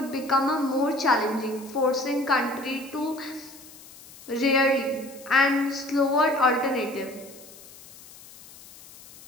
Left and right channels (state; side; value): noise; left; hiss, 20 dB below the sound